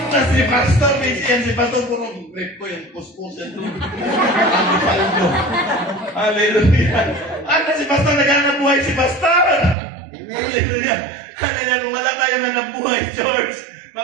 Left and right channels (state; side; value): drops out; left; at 9.8 s